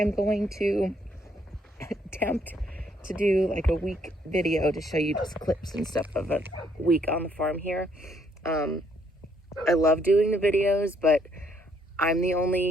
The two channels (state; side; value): normal; both; correlation 0.69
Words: going to attempt to do like a week video to show you just clips and stuff of a week on the farm here. I love doing the videos, but I'm the